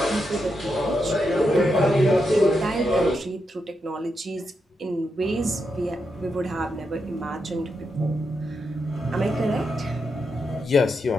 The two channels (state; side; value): normal; both; correlation 0.84